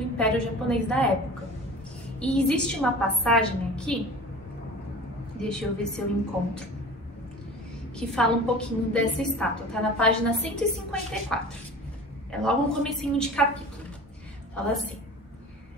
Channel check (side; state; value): both; normal; correlation 0.39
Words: Império Japonês da época. E existe uma passagem aqui, deixa eu ver se eu encontro, que fala um pouquinho dessa estátua, tá na página 154. É logo no comecinho de capítulo. Fala assim: